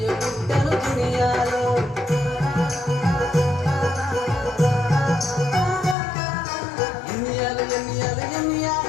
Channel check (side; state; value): right; drops out; at 6.0 s